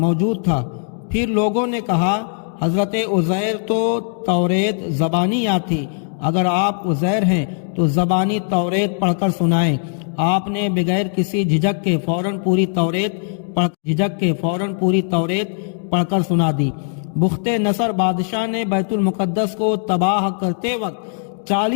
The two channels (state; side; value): silent; right; 66 dB below the other